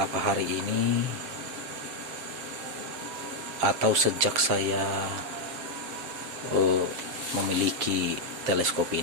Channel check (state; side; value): late; left; 7.5 ms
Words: hari ini atau sejak saya memiliki teleskop